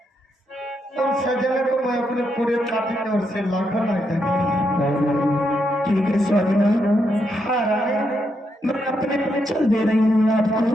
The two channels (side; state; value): both; normal; correlation 0.80